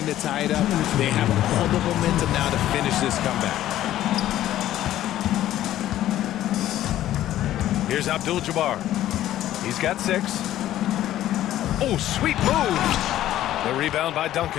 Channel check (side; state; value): right; quieter; 13.2 dB